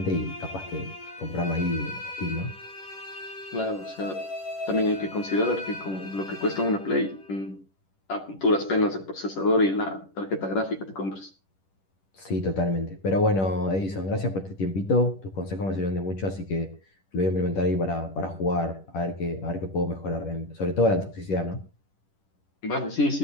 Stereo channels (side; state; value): right; late; 10 ms